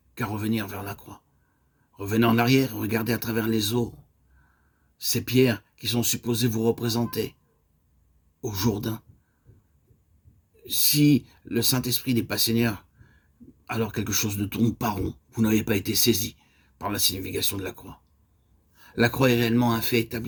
qu'à revenir vers la croix. Revenez en arrière, regardez à travers les eaux, ces pierres qui sont supposées vous représenter au Jourdain. Si le Saint-Esprit n'est pas Seigneur, alors quelque chose ne tourne pas rond. Vous n'avez pas été saisi par la signification de la croix. La croix est réellement un fait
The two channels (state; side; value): identical; both; correlation 1.00